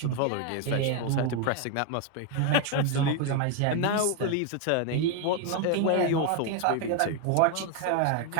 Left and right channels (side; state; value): both; different; correlation 0.01